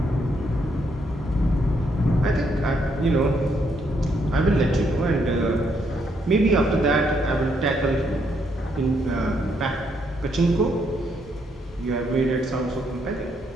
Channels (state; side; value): normal; both; correlation 0.74